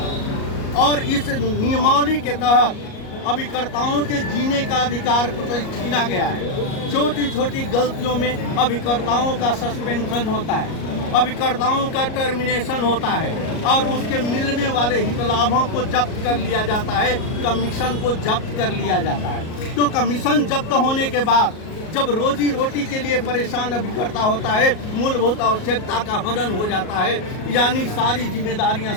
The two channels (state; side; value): late; right; 38 ms